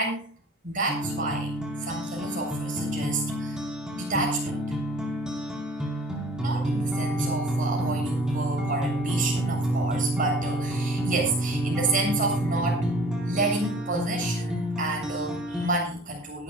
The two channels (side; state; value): both; normal; correlation 0.49